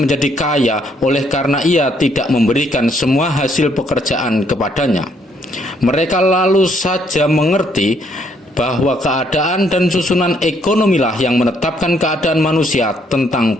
menjadi kaya oleh karena ia tidak memberikan semua hasil pekerjaan kepadanya. Mereka lalu saja mengerti bahwa keadaan dan susunan ekonomilah yang menetapkan keadaan manusia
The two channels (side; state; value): both; normal; correlation 0.69